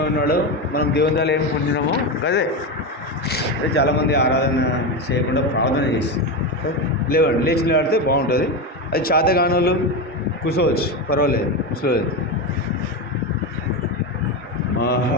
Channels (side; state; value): both; normal; correlation 0.16